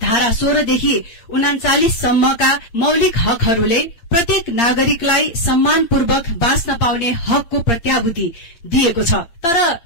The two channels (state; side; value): late; right; 8.7 ms